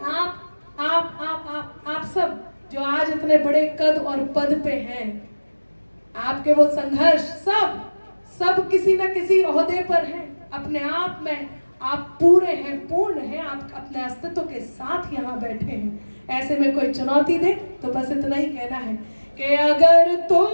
आप सब जो आज इतने बड़े कद और पद पे हैं, आपके वो संघर्ष, सब किसी न किसी ओहदे पर हैं, अपने आप में आप पूरे हैं, पूर्ण हैं, आप अपने अस्तित्व के साथ यहाँ बैठे हैं। ऐसे में कोई चुनौती दे तो बस इतना ही कहना है कि अगर तुम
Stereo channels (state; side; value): inverted; both; correlation -1.00